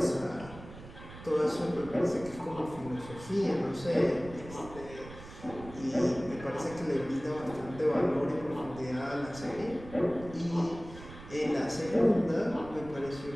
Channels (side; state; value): right; noise; rumble, 16 dB below the sound